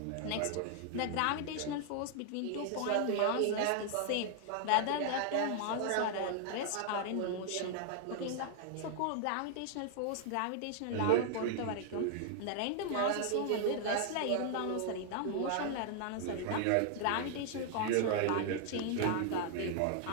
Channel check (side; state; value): both; different; correlation 0.00